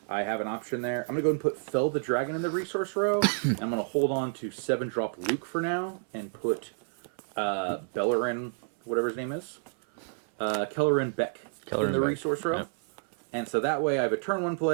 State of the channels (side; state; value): left; silent; 58 dB below the other